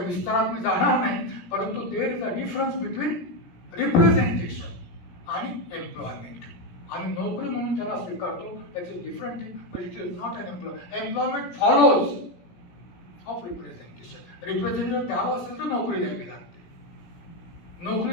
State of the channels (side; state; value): right; late; 17 ms